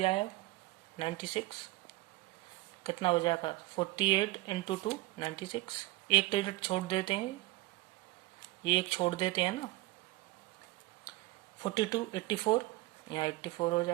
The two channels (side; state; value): left; quieter; 19.6 dB